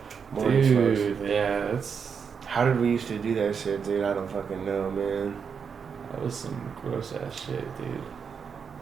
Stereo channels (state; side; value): quieter; left; 6.4 dB